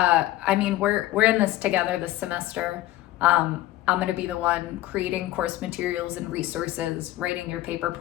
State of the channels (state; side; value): quieter; right; 15.6 dB